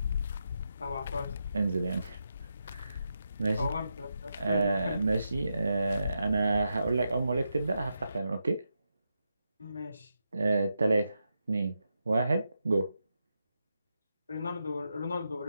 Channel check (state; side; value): inverted; both; correlation -0.85